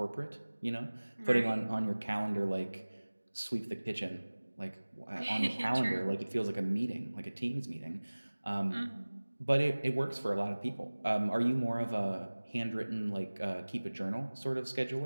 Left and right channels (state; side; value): inverted; both; correlation -1.00